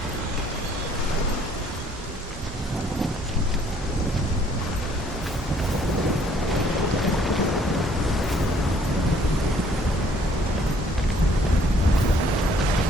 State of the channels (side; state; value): both; normal; correlation 0.61